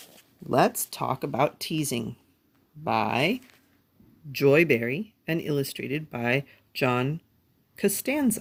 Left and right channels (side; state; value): both; identical; correlation 1.00